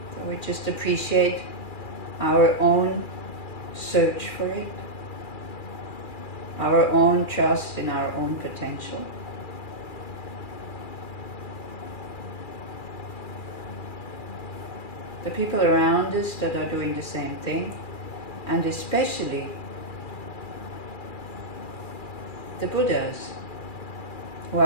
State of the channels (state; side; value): late; right; 2.4 ms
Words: So we just appreciate our own search for it, our own trust in our own potential. The people around us that are doing the same thing, and especially the Buddhas who